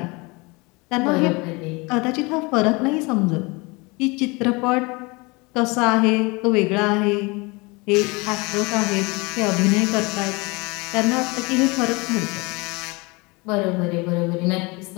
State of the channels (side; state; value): right; quieter; 26.4 dB